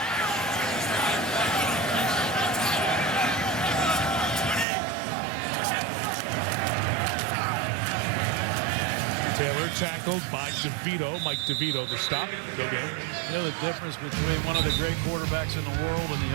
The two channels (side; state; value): left; drops out; at 4.7 s